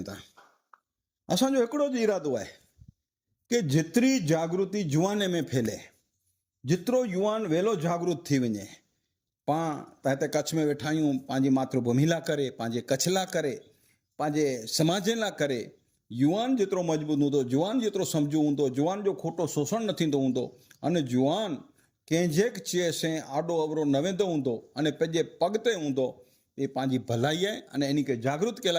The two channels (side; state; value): both; identical; correlation 1.00